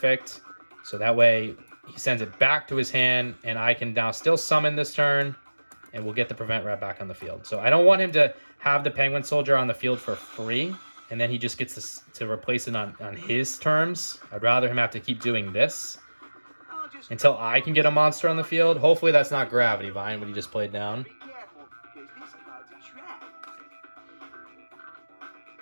So that way, he sends it back to his hand, and I can now still summon this turn, and we'll get the Prevent Rat back on the field. So I don't want him to have the Penguin Soldier on the field for free, and then he just gets to replace it on his terms. I'd rather him have to keep doing this until I can get a monster on the field. Hopefully that's not Gravity Vine, what he just played down. Be careful, because this card's a trap.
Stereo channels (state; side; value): inverted; both; correlation -1.00